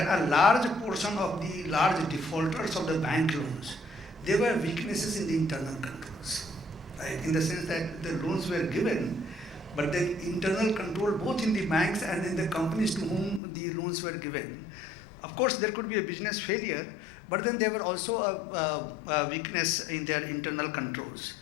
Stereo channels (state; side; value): drops out; right; at 13.4 s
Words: a large portion of the large defaulters of the bank loans, there were weaknesses in the internal controls, right? In the sense that the loans were given, but the internal control both in the banks and in the companies to whom the loans were given. Of course, there could be a business failure, but then there were also a weakness in their internal controls.